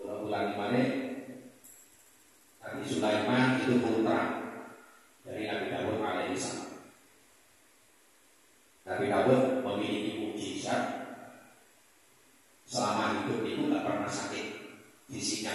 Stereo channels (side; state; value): both; identical; correlation 1.00